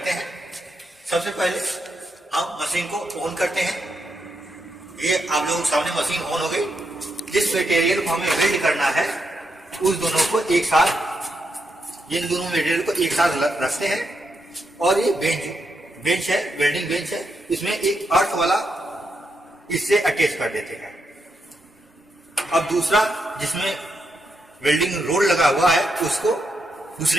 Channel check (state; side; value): normal; both; correlation 0.82